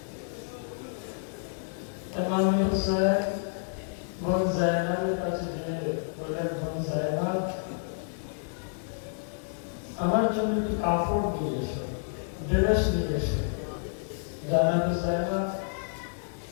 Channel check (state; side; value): silent; right; digital silence